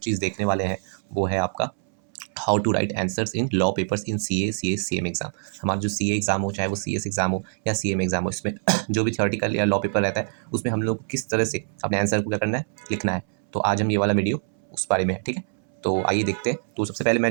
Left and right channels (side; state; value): left; silent; 62 dB below the other